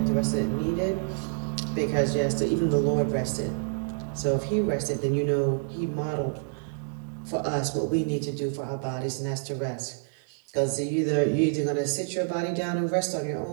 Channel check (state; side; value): silent; left; digital silence